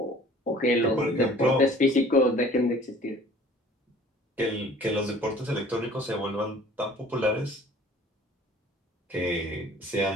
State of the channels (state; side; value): normal; both; correlation 0.50